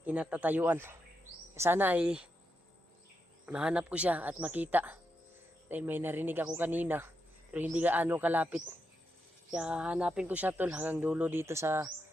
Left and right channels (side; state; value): both; normal; correlation 0.84